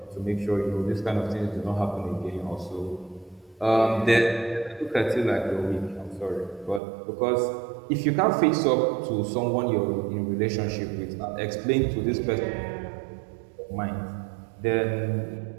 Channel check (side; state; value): left; drops out; at 6.8 s